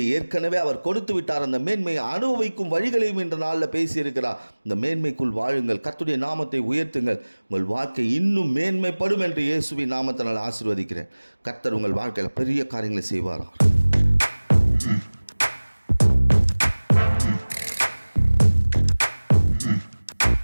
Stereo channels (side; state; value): both; inverted; correlation -1.00